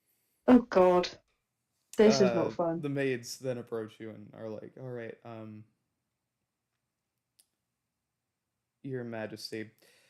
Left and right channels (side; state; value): both; identical; correlation 1.00